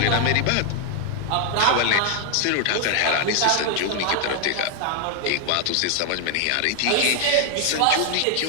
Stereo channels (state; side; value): different; both; correlation 0.00